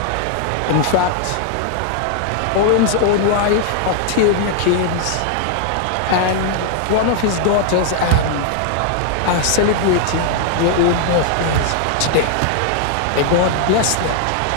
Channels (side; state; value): both; different; correlation 0.00